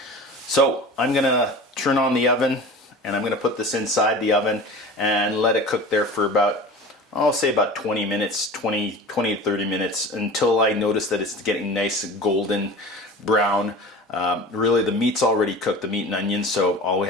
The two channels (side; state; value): both; normal; correlation 0.37